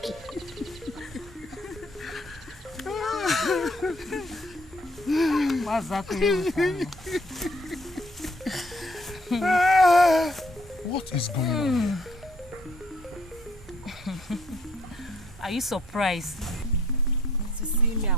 What is going on? Are you surprised to see me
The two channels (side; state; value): both; normal; correlation 0.63